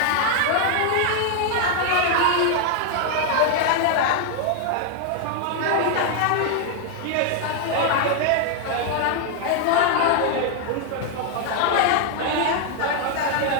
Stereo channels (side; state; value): both; different; correlation 0.00